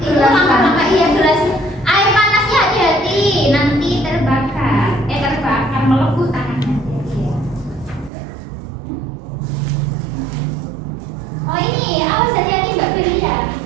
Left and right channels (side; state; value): left; drops out; at 8.1 s